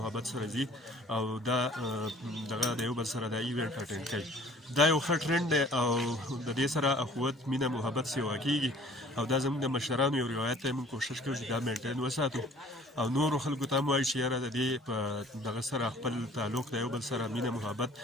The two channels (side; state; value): both; normal; correlation 0.51